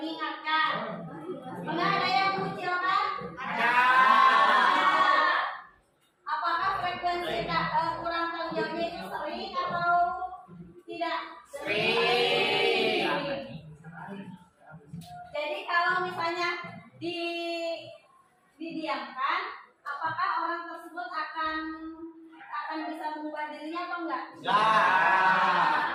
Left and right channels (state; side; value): identical; both; correlation 1.00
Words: Enggak ada yang mengucilkan? Ada. Apakah frekuensi kurang tanggung jawabnya itu sering atau tidak? Sering. Jadi kalau misalnya didiamkan, apakah orang tersebut akan bisa mengubah dirinya atau enggak?